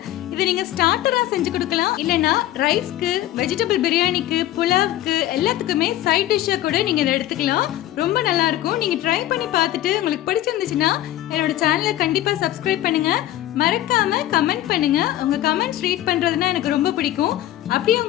இதை நீங்க ஸ்டார்டரா செஞ்சு கொடுக்கலாம், இல்லைன்னா ரைஸ்க்கு, வெஜிடபிள் பிரியாணிக்கு, புலாவுக்கு எல்லாத்துக்குமே சைட் டிஷ்ஷா கூட நீங்க இதை எடுத்துக்கலாம். ரொம்ப நல்லா இருக்கும். நீங்க ட்ரை பண்ணி பார்த்துட்டு உங்களுக்கு பிடிச்சிருந்துச்சுன்னா என்னோட சேனலை கண்டிப்பா சப்ஸ்கிரைப் பண்ணுங்க. மறக்காம கமெண்ட் பண்ணுங்க. உங்க கமெண்ட்ஸ் ரீட் பண்றதுன்னா எனக்கு ரொம்ப பிடிக்கும். அப்படியே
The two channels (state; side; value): quieter; right; 13.9 dB